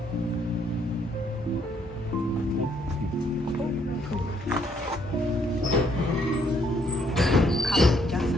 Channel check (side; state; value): both; normal; correlation 0.68